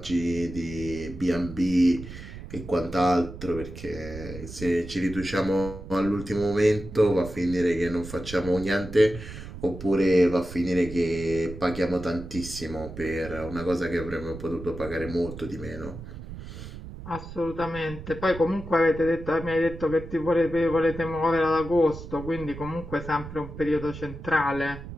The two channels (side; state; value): right; noise; rumble, 12 dB below the sound